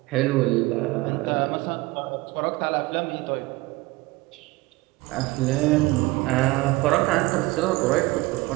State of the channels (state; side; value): quieter; left; 21.5 dB